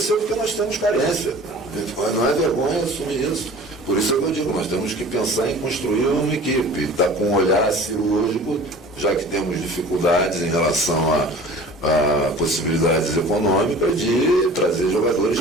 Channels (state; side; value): normal; both; correlation 0.43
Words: nós temos carência. Não é vergonha assumir isso. Por isso é que eu digo, nós temos que pensar em construir uma equipe, estar com um olhar cirúrgico, já que temos dificuldades em relação a possibilidades econômicas de trazer jogadores